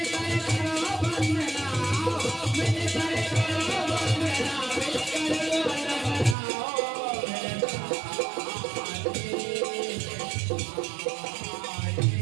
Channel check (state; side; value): drops out; left; at 6.4 s